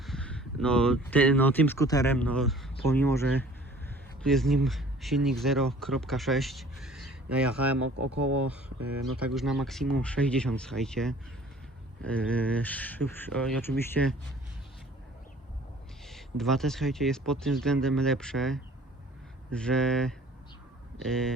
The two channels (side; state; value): both; normal; correlation 0.51